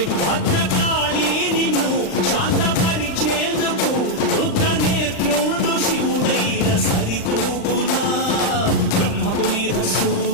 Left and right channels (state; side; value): late; right; 39 ms